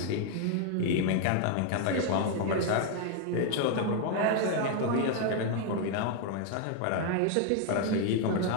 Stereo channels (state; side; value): different; both; correlation 0.00